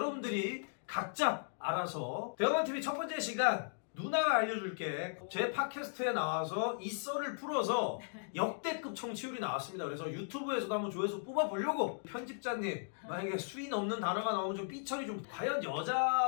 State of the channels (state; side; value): silent; right; digital silence